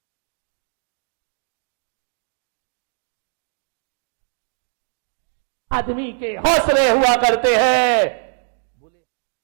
कहा पानी से ज्यादा शक्तिशाली आदमी का संकल्प हुआ करता है, आदमी के हौसले हुआ करते हैं। बोले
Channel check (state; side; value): silent; left; digital silence